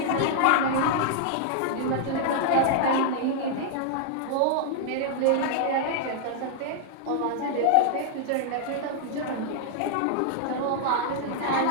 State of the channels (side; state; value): both; different; correlation -0.01